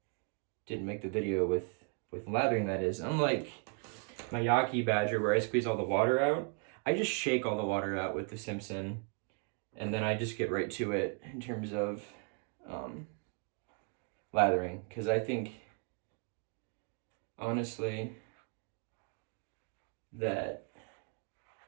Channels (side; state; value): left; quieter; 39.2 dB